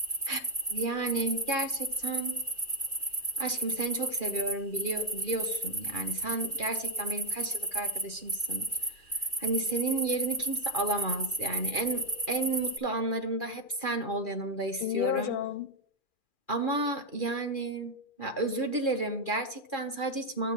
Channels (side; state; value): right; late; 2.4 ms